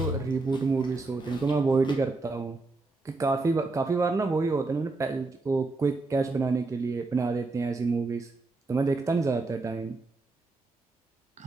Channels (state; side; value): quieter; left; 3.5 dB